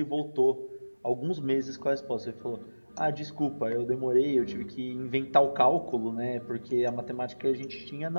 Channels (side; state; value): both; inverted; correlation -1.00